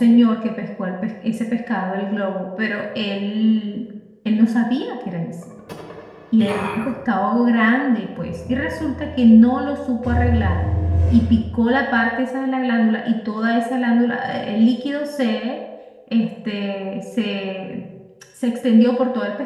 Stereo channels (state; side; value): identical; both; correlation 1.00